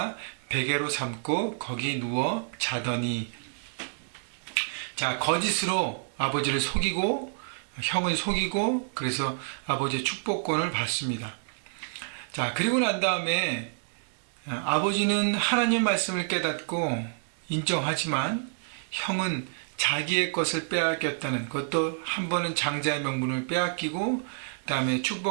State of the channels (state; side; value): silent; left; digital silence